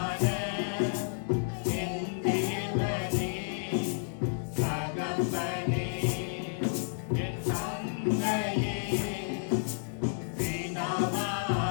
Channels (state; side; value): silent; right; digital silence